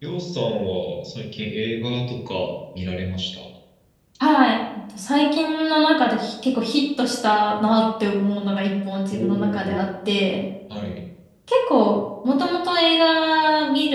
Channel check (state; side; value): identical; both; correlation 1.00